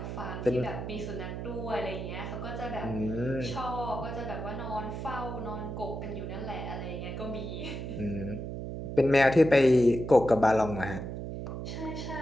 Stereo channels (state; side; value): noise; right; hum, 6 dB below the sound